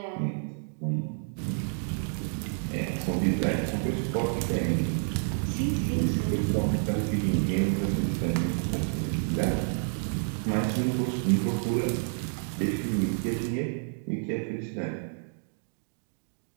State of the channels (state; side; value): silent; left; 58 dB below the other